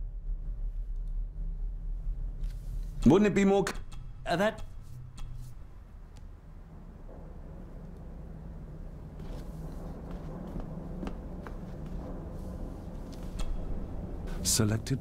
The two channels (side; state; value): both; identical; correlation 1.00